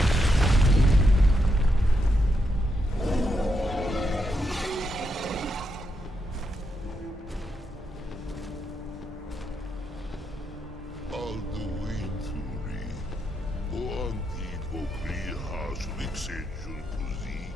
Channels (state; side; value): normal; both; correlation 0.82